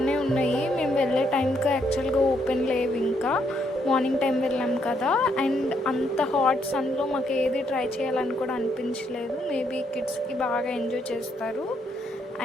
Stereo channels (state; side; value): normal; both; correlation 0.74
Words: ఉన్నాయి. మేము వెళ్ళే టైంకి యాక్చువల్గా ఓపెన్ లేవు. ఇంకా మార్నింగ్ టైం వెళ్ళాం కదా. అండ్ అంత హాట్ సన్లో మాకు ఏది ట్రై చేయాలని కూడా అనిపించలేదు. మేబీ కిడ్స్కి బాగా ఎంజాయ్ చేస్తారు.